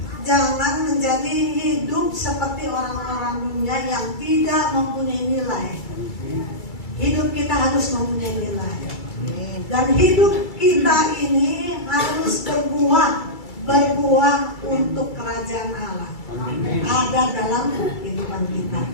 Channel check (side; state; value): right; late; 2.3 ms